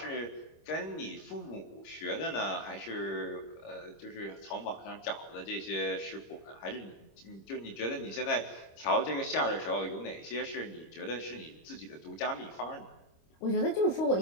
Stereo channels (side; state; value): right; late; 26 ms